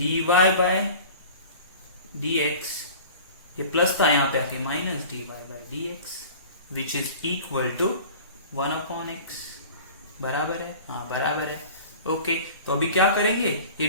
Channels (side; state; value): both; inverted; correlation -0.41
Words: बाई dx, ये प्लस था यहाँ पे आके minus dy by dx, which is equal to 1/x, बराबर है, हाँ बराबर है, ओके। तो अभी क्या करेंगे,